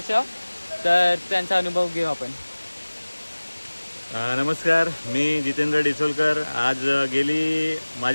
तर त्यांचा अनुभव घेऊ आपण. नमस्कार, मी जितेंद्र डिसोलकर. आज गेली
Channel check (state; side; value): inverted; both; correlation -1.00